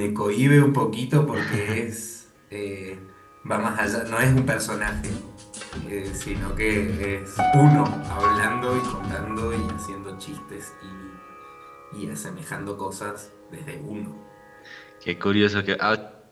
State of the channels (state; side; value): identical; both; correlation 1.00